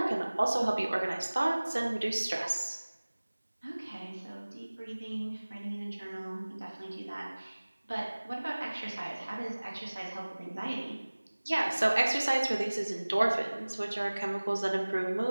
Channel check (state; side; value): inverted; both; correlation -1.00